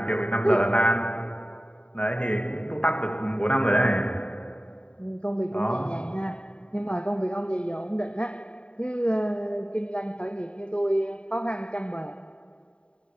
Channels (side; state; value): right; late; 0.054 ms